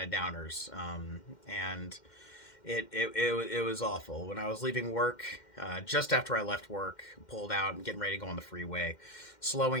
of downers, and it was awful. When I was leaving work, just after I left work, pulled out and getting ready to go on the freeway,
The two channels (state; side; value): late; right; 2.1 ms